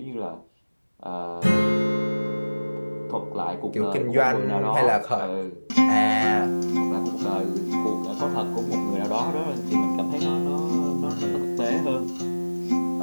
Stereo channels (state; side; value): inverted; both; correlation -1.00